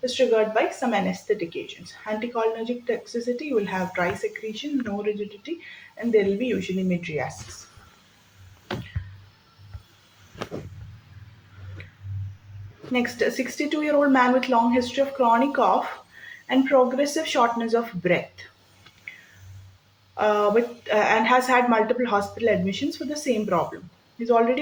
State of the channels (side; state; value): both; identical; correlation 1.00